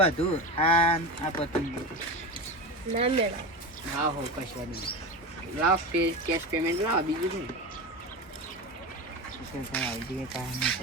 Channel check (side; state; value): both; normal; correlation 0.24